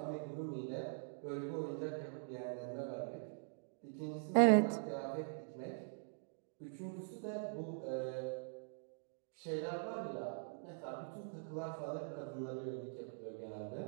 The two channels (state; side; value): silent; left; digital silence